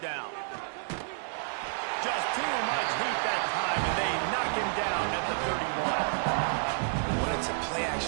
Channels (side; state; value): left; silent; 58 dB below the other